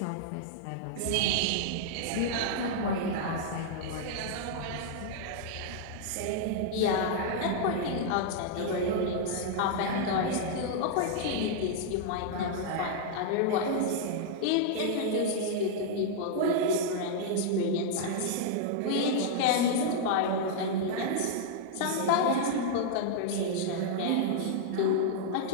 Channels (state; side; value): different; both; correlation -0.01